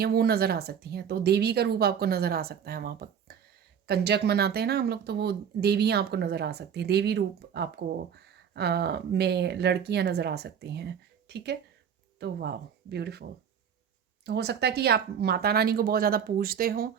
वो नज़र आ सकती हैं, तो देवी का रूप आपको नज़र आ सकता है वहाँ पर। कंजक मनाते हैं ना हम लोग, तो वो देवियाँ आपको नज़र आ सकती हैं, देवी रूप आपको में लड़कियाँ नज़र आ सकती हैं, ठीक है? तो वाओ! ब्यूटीफुल। तो हो सकता है कि आप माता रानी को बहुत ज़्यादा पूजते हो,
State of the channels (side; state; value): left; quieter; 7.9 dB